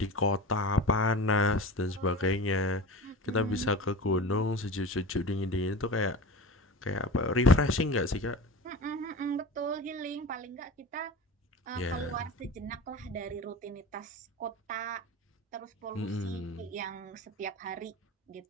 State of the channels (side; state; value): both; normal; correlation 0.32